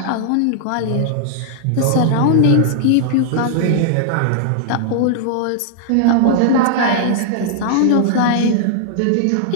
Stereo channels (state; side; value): different; both; correlation -0.01